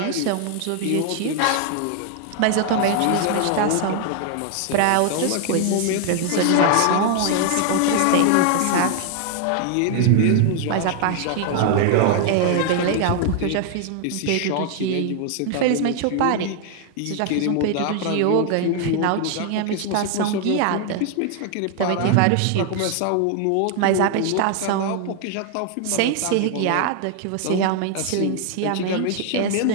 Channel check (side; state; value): both; different; correlation 0.00